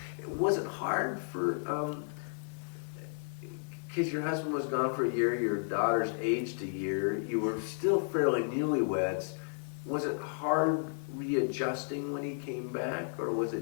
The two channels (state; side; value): silent; right; 56 dB below the other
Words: Was it hard for, because your husband was gone for a year, your daughter's aged a year, you were still fairly newlyweds. Was it hard readjusting when he came back, or was